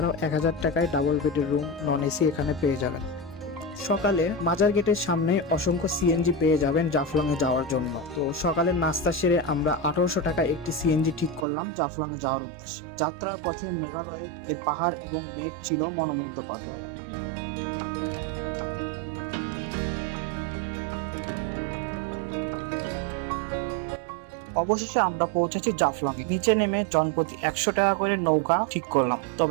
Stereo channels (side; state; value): left; drops out; at 11.5 s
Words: 1000 টাকায় ডাবল বেডের রুম নন এসি এখানে পেয়ে যাবেন। সকালে মাজার গেটের সামনে অসংখ্য সিএনজি পেয়ে যাবেন জাফলং এ যাওয়ার জন্য। তো সকালের নাস্তা সেরে আমরা 1800 টাকা একটি সিএনজি ঠিক করলাম জাফলং এ যাওয়ার উদ্দেশ্যে। যাত্রার পথে মেঘালয়ে এর পাহাড় এবং মেঘ ছিল মনোমুগ্ধকর। অবশেষে আমরা পৌঁছেছি জাফলং এ। নিচে নেমে জনপ্রতি 100 টাকা করে নৌকা ঠিক করলাম,